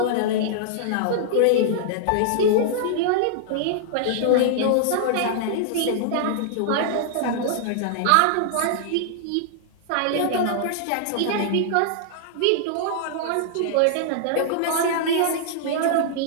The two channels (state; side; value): different; both; correlation -0.01